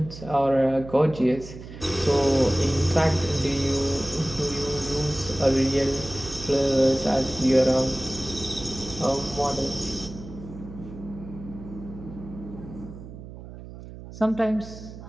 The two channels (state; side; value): noise; right; hum, 14 dB below the sound